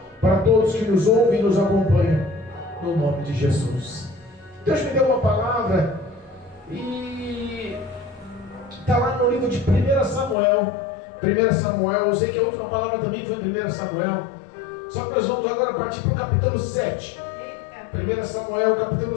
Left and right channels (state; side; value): drops out; right; at 10.4 s